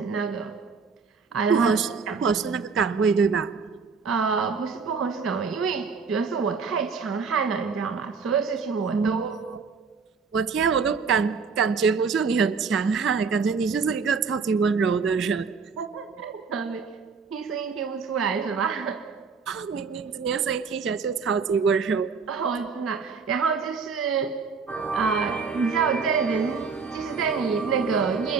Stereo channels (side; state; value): left; quieter; 5.3 dB